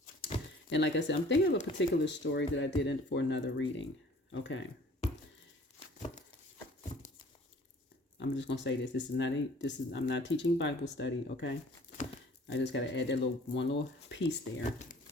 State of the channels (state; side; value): normal; both; correlation 0.52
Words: and like I said, I'm thinking of a particular story that I did for another reading. Okay. I'm just going to say this. I'm not teaching Bible study, okay? I just got to add that one little piece there.